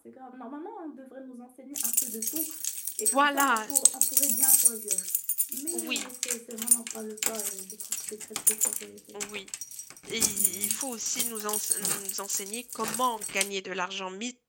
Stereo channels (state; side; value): identical; both; correlation 1.00